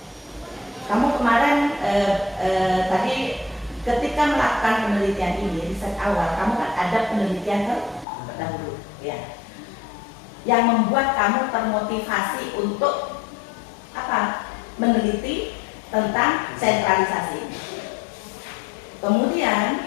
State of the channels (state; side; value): drops out; right; at 8.1 s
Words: Kamu kemarin tadi ketika melakukan penelitian ini, riset awal, kamu kan ada penelitian terdahulu, ya, yang membuat kamu termotivasi untuk apa? Meneliti tentang sentralisasi. Kemudian